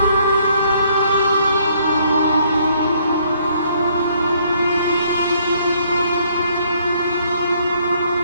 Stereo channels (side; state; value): both; inverted; correlation -0.66